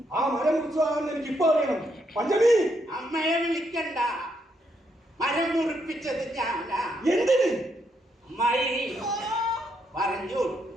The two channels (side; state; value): both; normal; correlation 0.77